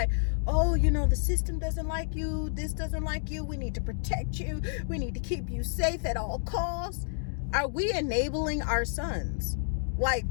oh, you know, the system doesn't like you. This doesn't like you. We need to protect you. We need to keep you safe at all costs. Are we enabling our sons? Like,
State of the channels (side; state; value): right; silent; digital silence